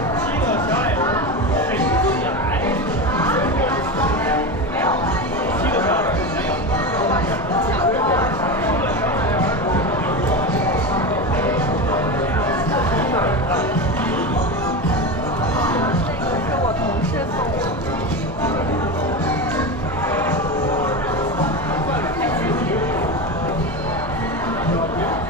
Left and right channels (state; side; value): normal; both; correlation 0.21